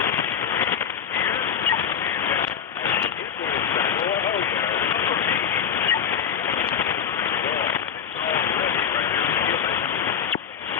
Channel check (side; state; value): right; quieter; 8.0 dB